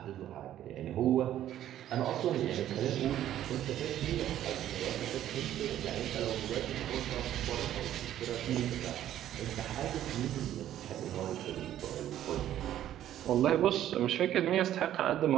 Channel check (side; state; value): left; quieter; 11.9 dB